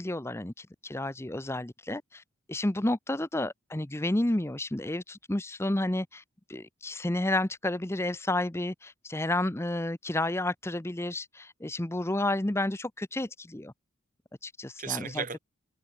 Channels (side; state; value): both; normal; correlation 0.75